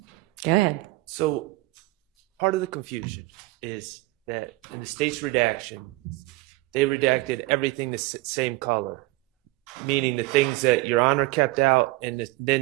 Go ahead. So part of the confusion is that in the state's redaction, they redacted everything the same color, meaning the things that Your Honor kept out, and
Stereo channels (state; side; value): quieter; left; 20.1 dB